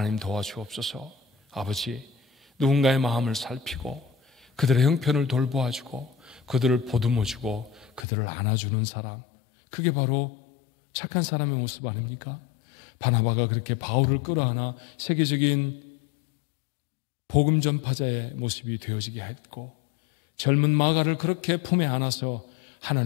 도와주옵소서. 아버지, 누군가의 마음을 살피고 그들의 형편을 돌보아주고 그들을 보듬어주고 그들을 안아주는 사람, 그게 바로 착한 사람의 모습 아닙니까? 바나바가 그렇게 바울을 끌어안아 세계적인 복음 전파자의 모습이 되어지게 했고, 젊은 마가를 그렇게 품에 안아서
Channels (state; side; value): drops out; right; at 8.1 s